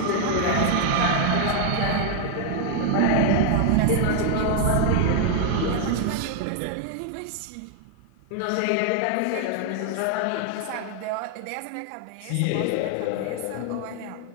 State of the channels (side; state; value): both; different; correlation 0.00